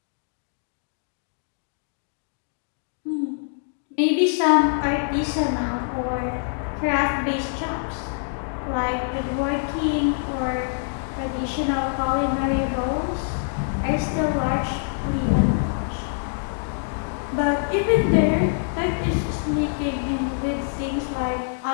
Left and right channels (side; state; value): right; silent; digital silence